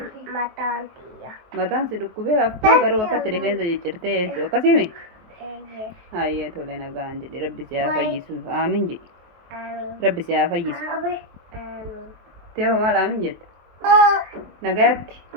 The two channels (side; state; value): left; late; 23 ms